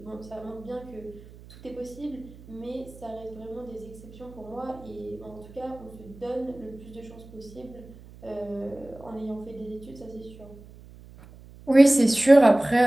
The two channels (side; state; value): right; noise; hum, 20 dB below the sound